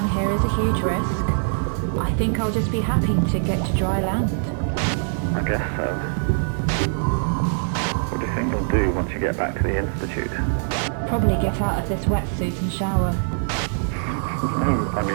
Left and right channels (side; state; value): left; silent; digital silence